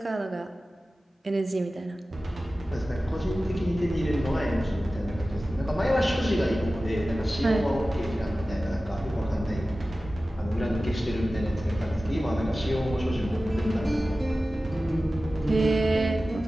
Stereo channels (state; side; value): normal; both; correlation 0.96